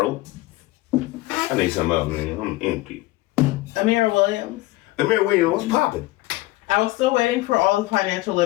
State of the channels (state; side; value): quieter; right; 19.2 dB